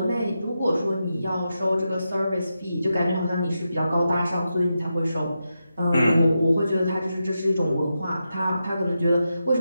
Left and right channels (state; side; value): inverted; both; correlation -0.88